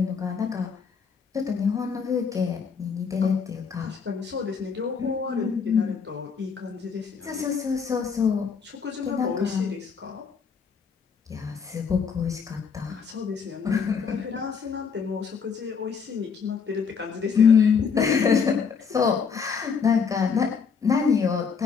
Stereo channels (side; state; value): right; quieter; 6.1 dB